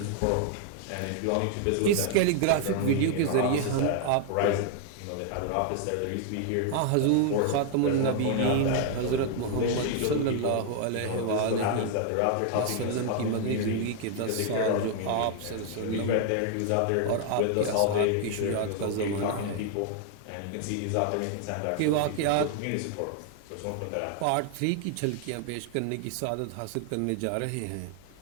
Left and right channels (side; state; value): both; different; correlation 0.00